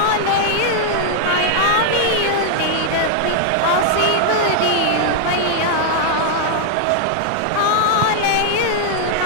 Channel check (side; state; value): both; different; correlation -0.01